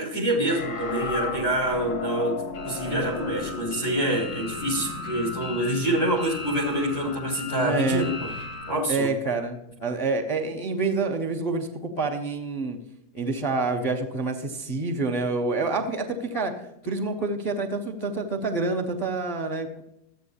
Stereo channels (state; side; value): late; right; 12 ms